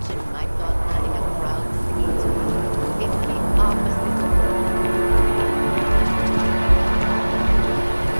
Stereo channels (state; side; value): inverted; both; correlation -1.00